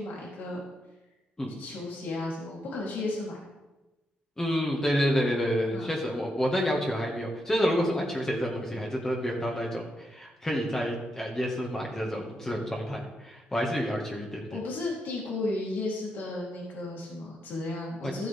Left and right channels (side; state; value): both; normal; correlation 0.82